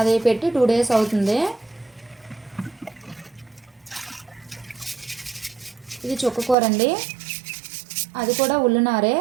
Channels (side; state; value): left; drops out; at 6.6 s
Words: పెట్టి 2 days అవుతుంది. ఇది చుక్కకూర అండి, అది కూడా ఉల్లినారే.